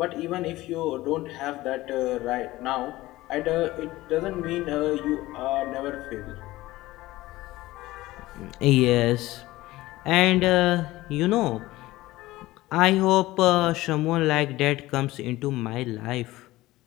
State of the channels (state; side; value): quieter; right; 17.8 dB